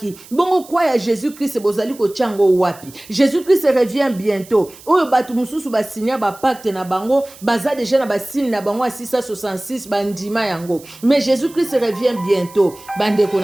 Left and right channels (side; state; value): right; noise; hiss, 21 dB below the sound